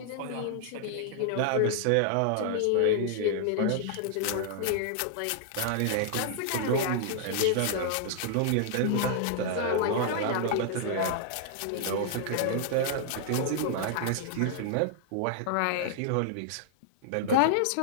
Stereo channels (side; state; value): both; different; correlation -0.01